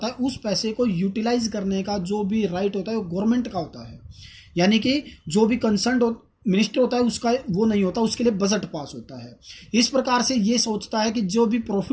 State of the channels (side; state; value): both; identical; correlation 1.00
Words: है उस पैसे को यूटिलाइज करने का जो भी राइट होता है वो गवर्नमेंट का होता है। यानी कि जो भी कंसर्न मिनिस्टर होता है उसका वो नहीं होता, उसके लिए बजट पास होता है। इस प्रकार से ये सोचता है कि जो भी